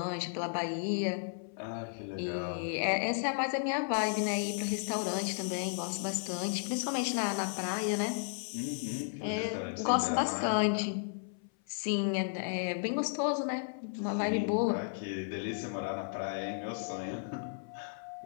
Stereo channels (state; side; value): silent; right; 55 dB below the other